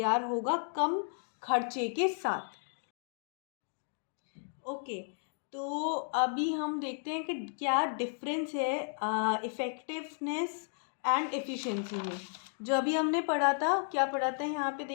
होगा कम खर्चे के साथ। ओके, तो अभी हम देखते हैं कि क्या डिफरेंस है इफ़ेक्टिवनेस एंड एफिशिएंसी में। जो अभी हमने पढ़ा था, क्या पढ़ा था यहाँ पे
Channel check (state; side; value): silent; right; digital silence